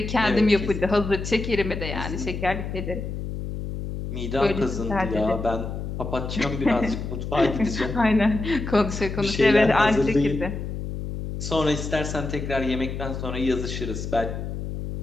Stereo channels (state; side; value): noise; left; hum, 6 dB below the sound